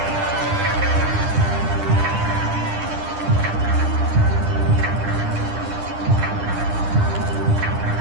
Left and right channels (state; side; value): late; left; 9.9 ms